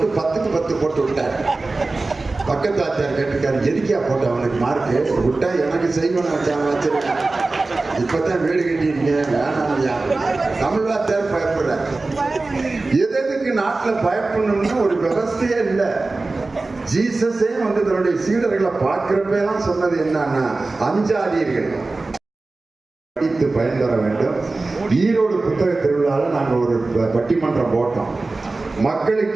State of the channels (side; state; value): left; quieter; 3.4 dB